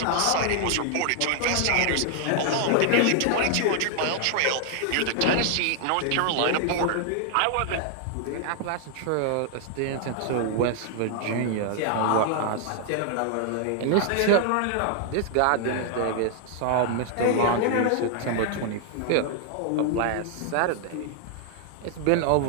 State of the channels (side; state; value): both; different; correlation 0.00